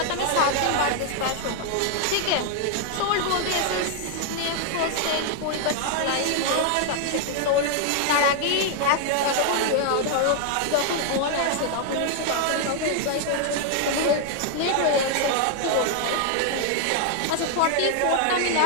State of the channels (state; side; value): different; both; correlation 0.00